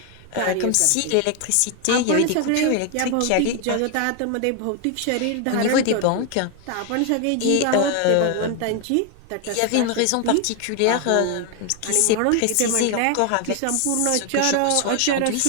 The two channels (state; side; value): different; both; correlation 0.01